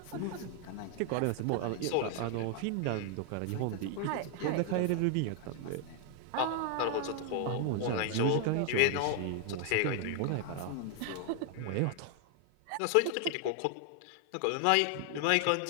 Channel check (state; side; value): different; both; correlation 0.00